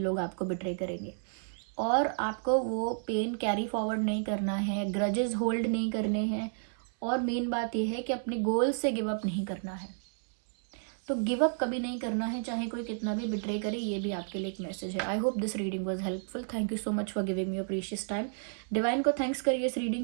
आपको बिट्रे करेंगे। और आपको वो पेन कैरी फॉरवर्ड नहीं करना है, ग्रजेस होल्ड नहीं करने हैं। और मेन बात यह है कि अपने गोल से गिव अप नहीं करना है। तो गिव अप कभी नहीं करना है, चाहे कोई कितना भी बिट्रे करे। ये भी आपके लिए एक मैसेज है। I hope this reading was helpful. Thank you so much for giving me your precious time. Divine को थैंक्स करिए इस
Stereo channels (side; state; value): left; silent; digital silence